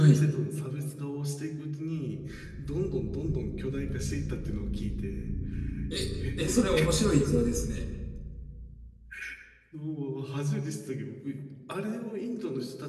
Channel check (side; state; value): both; identical; correlation 1.00